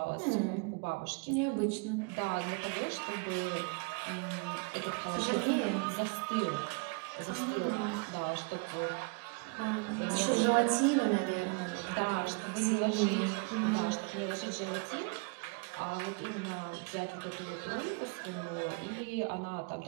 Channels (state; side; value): quieter; left; 33.5 dB